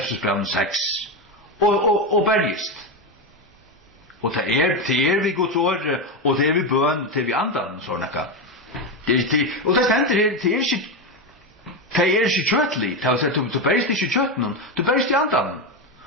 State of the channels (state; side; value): normal; both; correlation 0.13